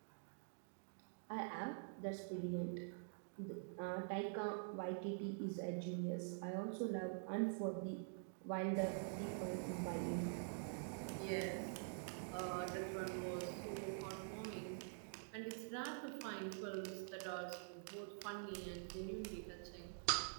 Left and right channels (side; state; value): left; silent; digital silence